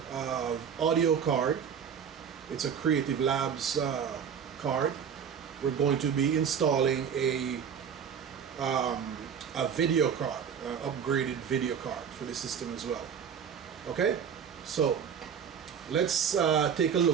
audio card. It's a Creative Labs card. We're going to be installing a video card, upgraded video card for the system as well. Okay, so let's take a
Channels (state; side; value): quieter; left; 7.6 dB